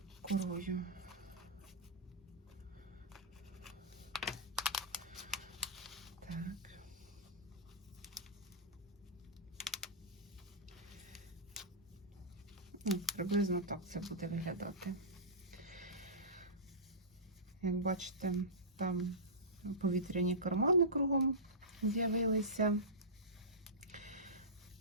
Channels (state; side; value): normal; both; correlation -0.18